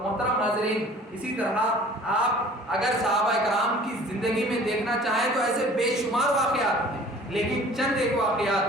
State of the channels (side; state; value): both; normal; correlation 0.48